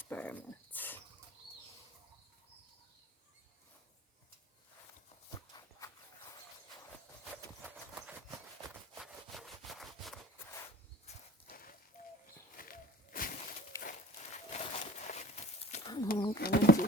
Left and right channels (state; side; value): normal; both; correlation 0.44